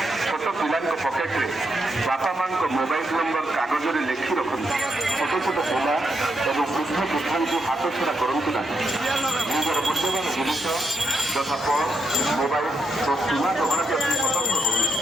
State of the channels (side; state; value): both; normal; correlation 0.81